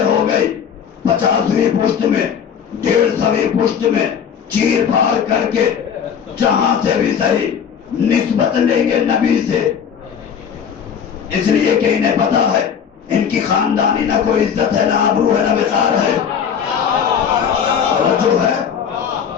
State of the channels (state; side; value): quieter; right; 7.7 dB